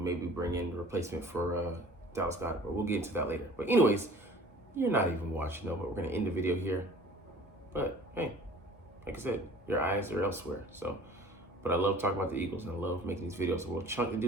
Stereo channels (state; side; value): normal; both; correlation 0.47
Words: bring in a replacement for Dallas Goedert, but we'll get into that later. But anyways, you're not even watching though, but we're gonna end the video here. But hey, like I said, your eyes are elsewhere. So, but I love talking about the Eagles, and I love making these videos. So we'll chunk the